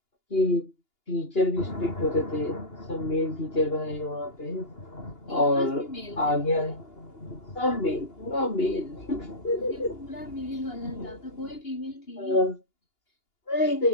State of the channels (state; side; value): late; right; 2.8 ms